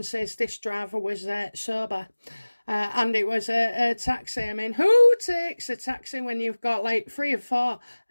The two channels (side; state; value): both; inverted; correlation -1.00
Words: is this driver was sober, and it was a taxi. I mean, who takes a taxi when you've got like 3 or 4